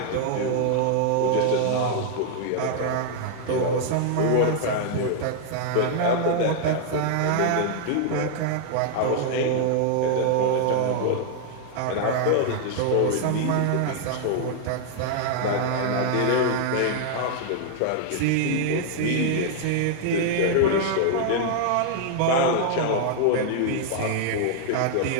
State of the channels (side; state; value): both; different; correlation 0.00